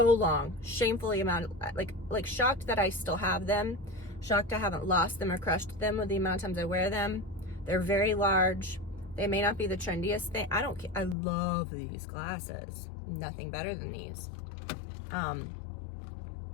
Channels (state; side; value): drops out; right; at 11.2 s